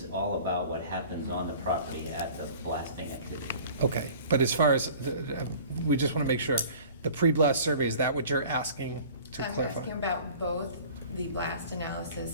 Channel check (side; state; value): both; inverted; correlation -0.46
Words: all about what happens on the property at the blasting activity. Okay, but as far as, we just want to make sure, the pre-blast survey, is that what you're asking to I'm clarify? asking about both the blast